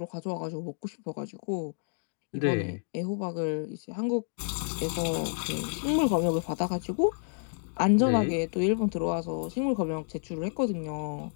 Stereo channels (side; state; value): right; silent; digital silence